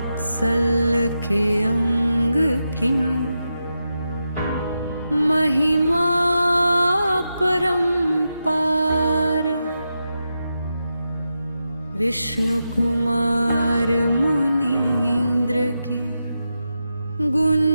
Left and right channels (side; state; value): both; inverted; correlation -0.89